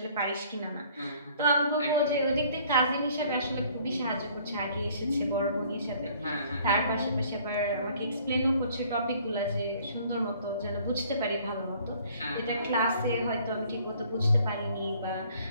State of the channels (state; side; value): inverted; both; correlation -0.57